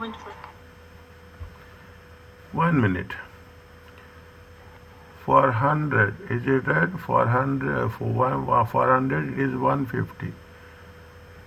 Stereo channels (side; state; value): both; identical; correlation 1.00